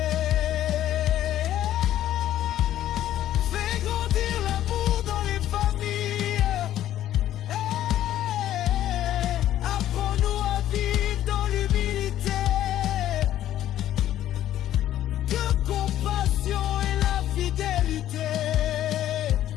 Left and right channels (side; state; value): right; quieter; 12.4 dB